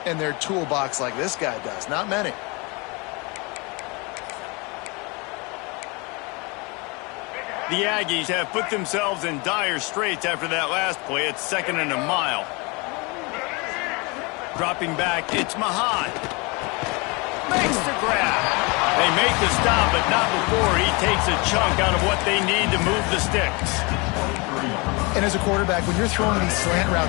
in their toolbox like this guy does? Not many. The Aggies have put themselves in dire straits after that last play. It's 2nd and a mile. Dropping back, it's Mahan. Makes the grab. They make the stop, but not before he takes a chunk out of what they need to move the sticks. And as a quarterback, when you're throwing these slant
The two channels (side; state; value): right; quieter; 28.3 dB